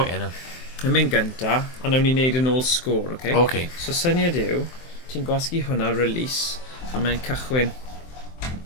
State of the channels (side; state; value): right; late; 23 ms